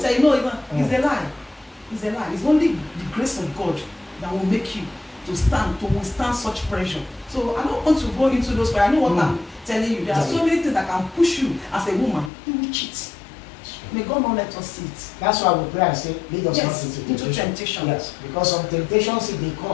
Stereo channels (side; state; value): right; drops out; at 12.3 s